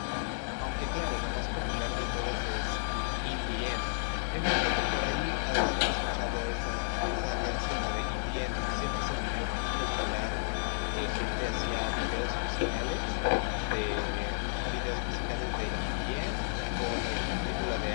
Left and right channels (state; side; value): silent; right; 56 dB below the other